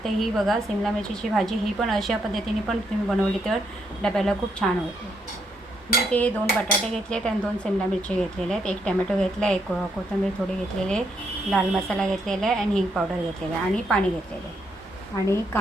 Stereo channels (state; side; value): normal; both; correlation 0.76